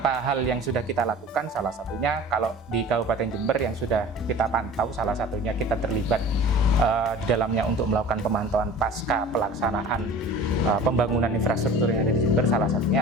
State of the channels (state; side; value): normal; both; correlation 0.41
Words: hal yang sudah kita lakukan, salah satunya kalau di Kabupaten Jember yang sudah kita pantau, salah satunya kita terlibat di dalamnya untuk melakukan pemantauan pasca pelaksanaan pembangunan infrastruktur yang ada di Jember. Salah